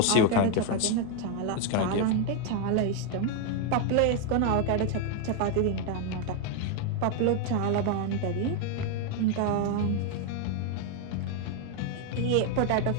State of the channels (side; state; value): both; different; correlation 0.01